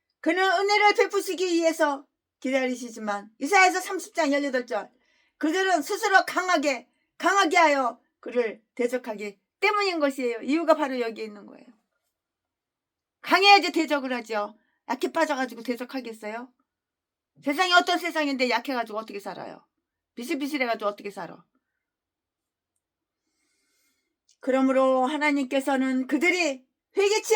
그는 은혜를 베푸시기 위해서 기다리시지만 이사야서 30장 18절 그들은 스스로 강하게 하여 그를 대적하기 때문인 것이에요. 이유가 바로 여기에 있는 거예요. 강해야지 대적을 하죠. 약해 빠져가지고 대적하겠어요? 세상이 어떤 세상인데 약해가지고 어떻게 살아요? 비실비실해가지고 어떻게 살아? 그러므로 하나님께서는 그들이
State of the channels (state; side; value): identical; both; correlation 1.00